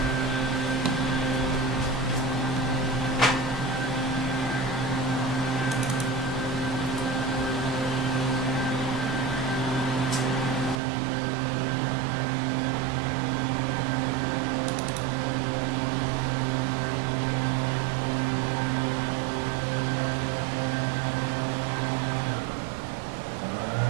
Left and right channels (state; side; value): drops out; left; at 10.8 s